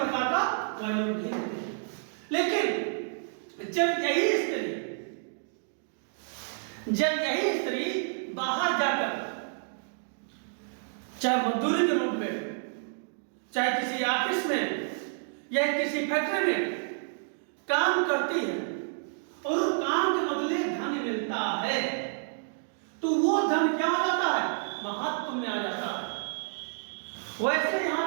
का वैल्यू नहीं देते। लेकिन जब यही स्त्री बाहर जाकर चाहे मजदूरी के रूप में, चाहे किसी ऑफिस में या किसी फैक्ट्री में काम करती है और उस काम के बदले धन मिलता है, तो वो धन क्या आ जाता है, महत्व में आ जाता है। वैसे यहां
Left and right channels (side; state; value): left; silent; digital silence